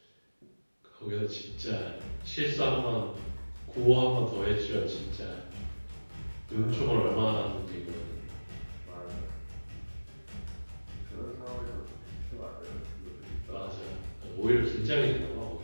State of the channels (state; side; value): inverted; both; correlation -1.00